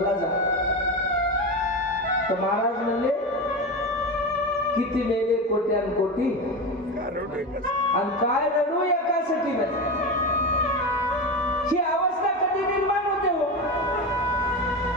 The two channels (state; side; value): normal; both; correlation 0.21